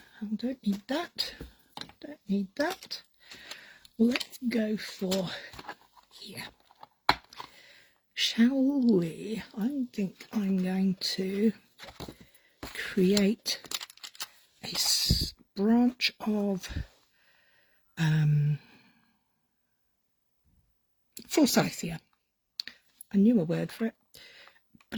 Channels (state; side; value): identical; both; correlation 1.00